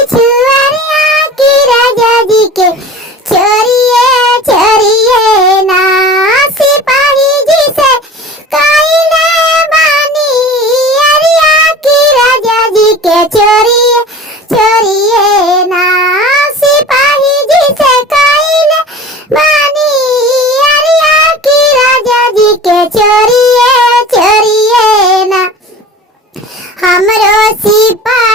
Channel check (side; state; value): both; normal; correlation 0.39